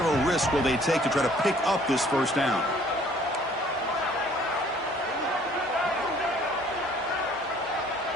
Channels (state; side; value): normal; both; correlation 0.57